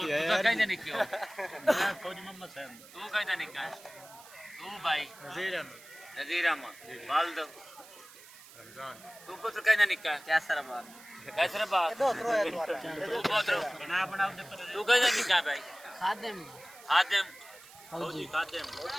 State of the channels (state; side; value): noise; right; hiss, 20 dB below the sound